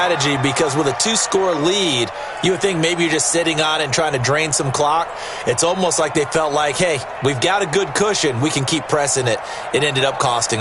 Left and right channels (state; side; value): identical; both; correlation 1.00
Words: because with a 2-score lead, you would think maybe you're just sitting on it and trying to drain some clock. It's almost like they felt like, hey, we've got a good cushion. We can keep pressing it. It ended up costing